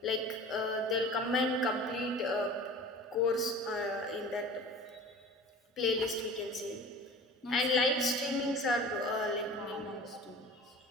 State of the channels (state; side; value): normal; both; correlation 0.40